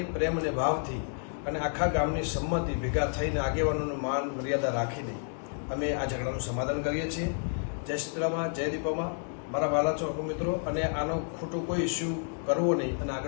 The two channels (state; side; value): silent; right; 58 dB below the other